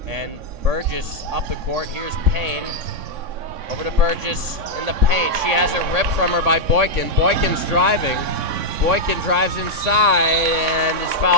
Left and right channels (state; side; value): late; left; 3.6 ms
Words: And Burgess up the court. Here's Payne. Over to Burgess in the paint. She has it ripped from her by Boykin. Boykin's driving. Boykin drives inside and is